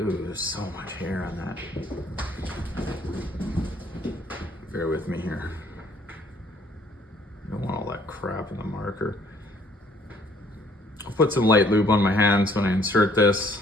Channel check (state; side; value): normal; both; correlation 0.62